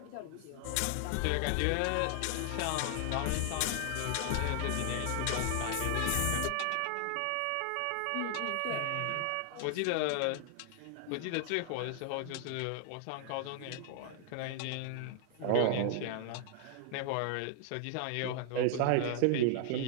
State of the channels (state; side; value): different; both; correlation 0.00